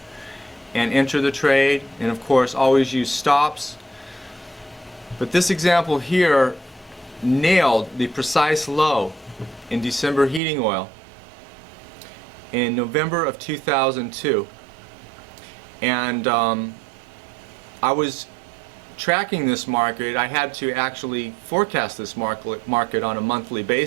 and enter the trade, and of course always use stops. But this example here nailed the precise low in December heating oil in November of 2002. And I was tracking this market. I had to actually forecast this market on a monthly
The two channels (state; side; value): drops out; left; at 10.4 s